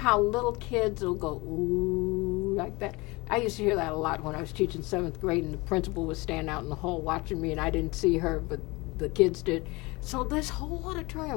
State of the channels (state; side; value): quieter; right; 23.8 dB